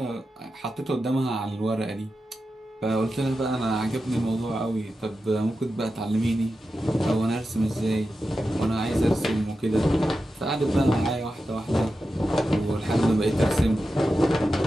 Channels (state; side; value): normal; both; correlation 0.91